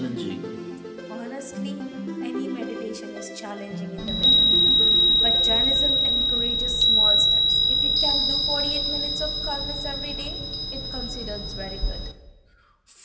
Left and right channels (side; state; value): both; identical; correlation 1.00